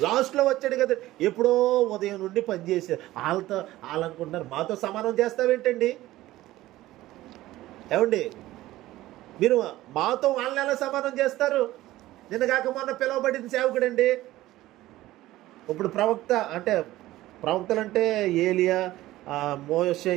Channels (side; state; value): left; quieter; 16.3 dB